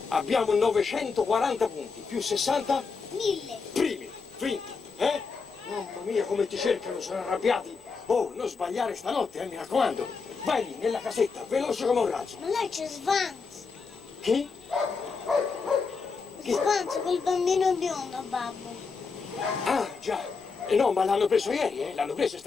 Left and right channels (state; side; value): quieter; right; 4.9 dB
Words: Abbiamo 940 punti, più 60? 1000. Primi, vinto, eh? Mamma mia, come ti cercano, sono arrabbiati. Oh, non sbagliare stanotte, mi raccomando. Vai lì, nella casetta, veloce come un razzo. Ma lei c'è Svans. Chi? Svans, quel bambino biondo, babbo. Ah, già. No, ma l'hanno preso ieri, eh? L'hanno preso, è